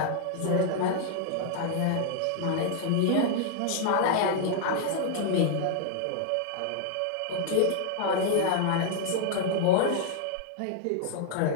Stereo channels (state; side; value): different; both; correlation -0.01